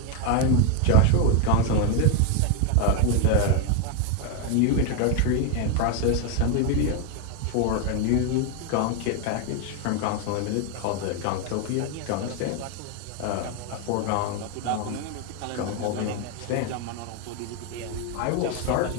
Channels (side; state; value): both; different; correlation 0.01